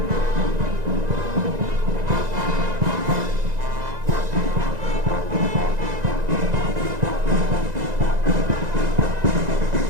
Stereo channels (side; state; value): left; late; 1.9 ms